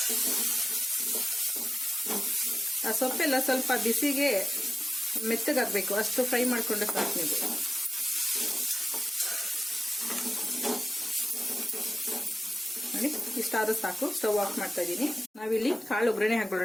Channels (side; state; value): both; normal; correlation 0.95